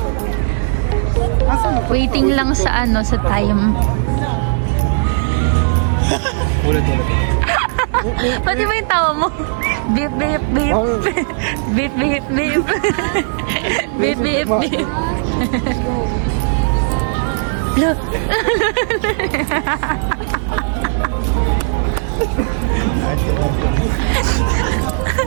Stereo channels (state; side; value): silent; left; 66 dB below the other